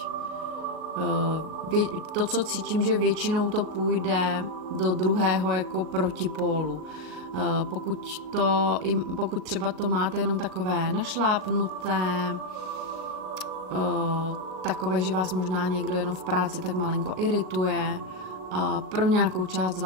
To, co cítím, že většinou to půjde do druhého jako protipólu. Pokud třeba to máte jenom takové našlápnuté, takové, že vás možná někdo jenom v práci tak malinko irituje, pro nějakou část z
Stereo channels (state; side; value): late; left; 38 ms